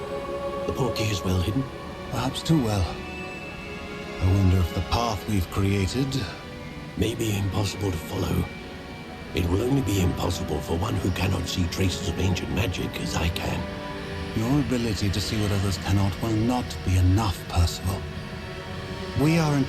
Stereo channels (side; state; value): both; identical; correlation 1.00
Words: The portkey is well hidden. Perhaps too well. I wonder if the path we've created... May be impossible to follow. It will only be impossible for one who cannot see traces of ancient magic as I can. Your ability to see what others cannot will not be enough, Percival. We are